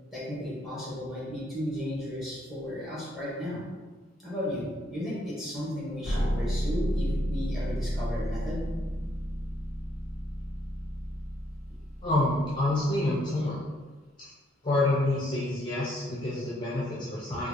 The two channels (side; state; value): both; normal; correlation 0.72